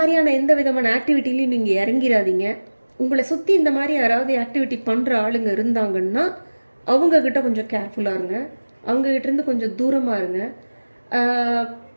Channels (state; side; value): inverted; both; correlation -1.00